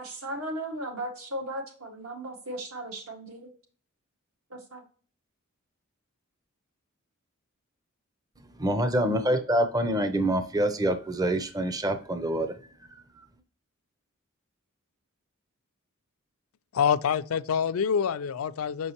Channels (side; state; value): both; normal; correlation 0.23